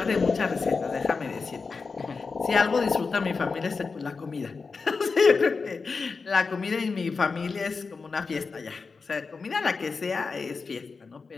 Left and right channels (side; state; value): right; quieter; 4.6 dB